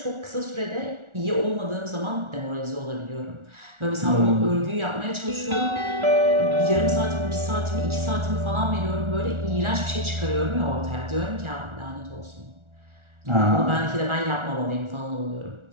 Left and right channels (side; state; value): left; late; 1.4 ms